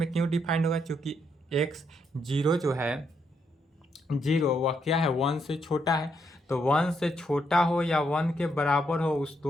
क्यों डिफाइंड होगा, चूंकि एक्स 0 जो है 0 वह क्या है, 1 से छोटा है। तो 1 से छोटा हो या 1 के बराबर हो, उस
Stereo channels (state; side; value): normal; both; correlation 0.77